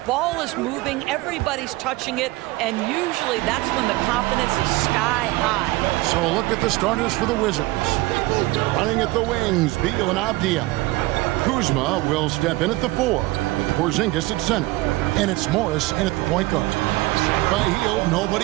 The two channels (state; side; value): quieter; left; 20.4 dB